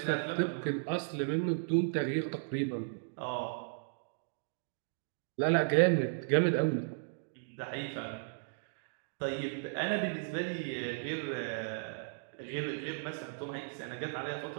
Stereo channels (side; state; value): left; silent; digital silence